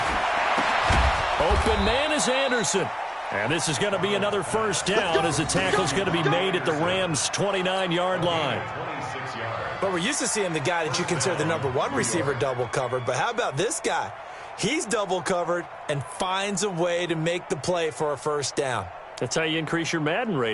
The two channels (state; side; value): identical; both; correlation 1.00